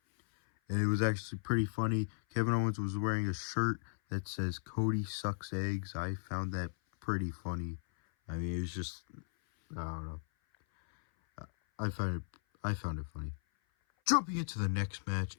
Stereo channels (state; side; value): silent; right; 54 dB below the other